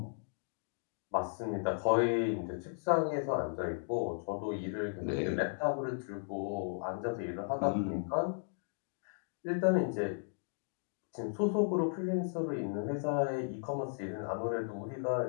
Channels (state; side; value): silent; right; digital silence